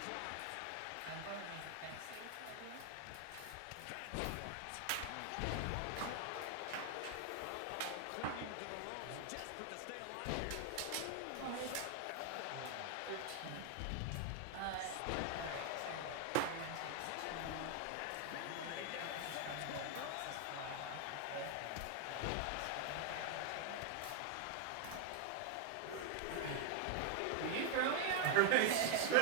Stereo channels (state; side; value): different; both; correlation 0.00